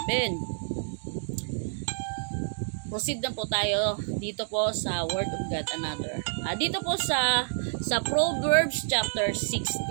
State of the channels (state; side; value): silent; left; digital silence